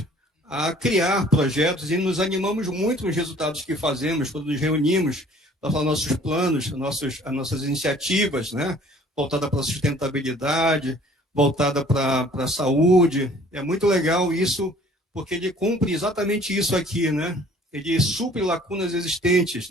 a criar projetos e nos animamos muito nos resultados que fazemos, quando nos reunimos para falar nossos planos, as nossas iniciativas, né? Voltada para a sustentabilidade, voltada para a saúde. É muito legal isso, porque ele cumpre exatamente isso aqui, né? Ele supre lacunas existentes,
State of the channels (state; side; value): normal; both; correlation 0.54